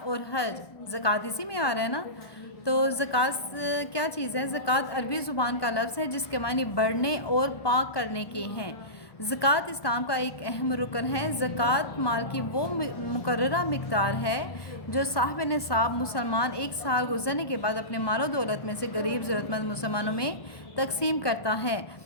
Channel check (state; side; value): late; right; 1.2 ms